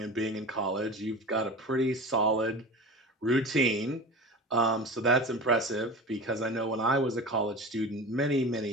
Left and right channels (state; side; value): normal; both; correlation 0.33